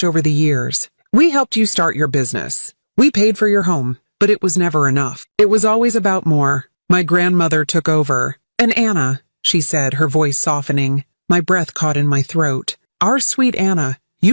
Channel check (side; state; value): both; inverted; correlation -1.00